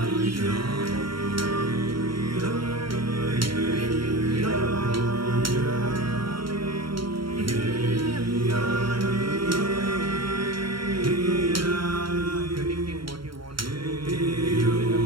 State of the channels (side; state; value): left; late; 0.73 ms